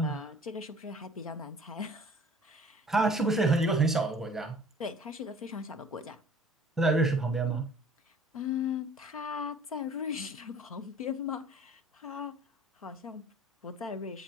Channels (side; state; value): both; normal; correlation 0.50